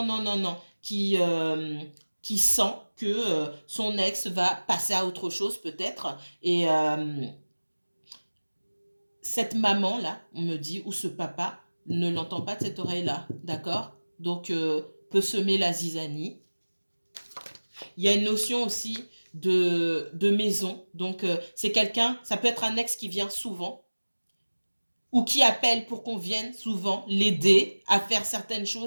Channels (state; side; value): inverted; both; correlation -1.00